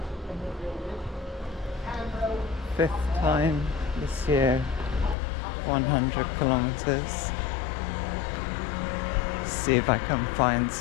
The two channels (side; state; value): right; drops out; at 5.2 s